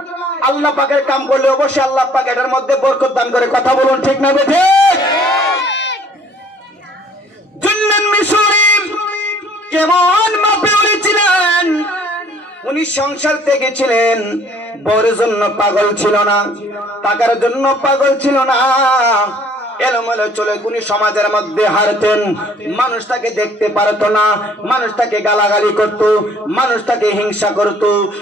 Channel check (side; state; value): both; normal; correlation 0.57